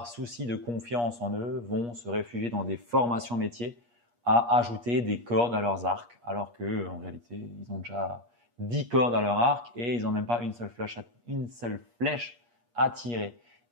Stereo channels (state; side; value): late; left; 8.4 ms